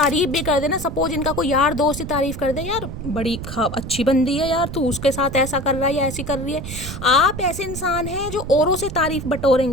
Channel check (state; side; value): noise; right; rumble, 8 dB below the sound